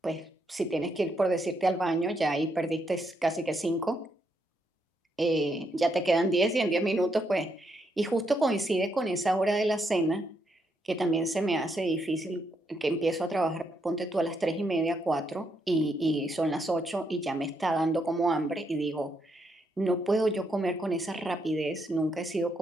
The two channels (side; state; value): both; normal; correlation 0.78